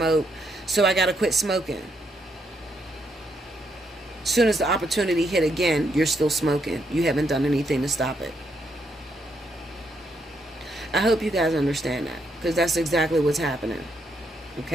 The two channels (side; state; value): both; normal; correlation 0.77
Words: so I got to quit smoking. As soon as the opportunity hit again, you're still smoking. You haven't done anything to stop it. I hope you guys understand that, because that's exactly what's happening.